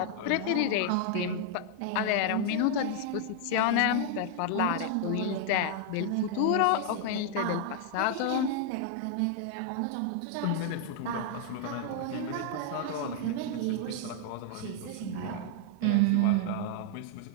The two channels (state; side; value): different; both; correlation 0.00